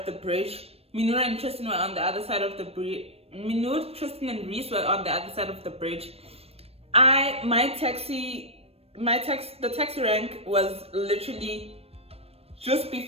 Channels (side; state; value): left; late; 0.29 ms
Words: the bridge. Minur and Tristan were on the other side of the bridge. Minur, Tristan and Reese were on the other side of the bridge. The taxi rank was literally just